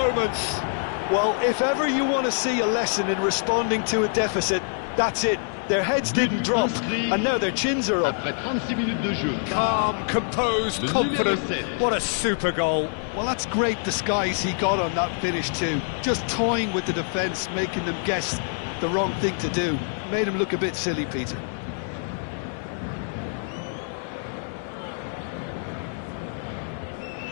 Well, if ever you want to see a lesson in responding to a deficit, that's it. Their heads didn't drop, and now their chins are up. Après 36 minutes de jeu. Calm, composed, confident. What a super goal. Well, that's great disguise he got on that finish too. Just toying with the defence, making them guess the wrong thing to do. Made him look a bit silly, Peter.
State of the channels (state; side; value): silent; right; 61 dB below the other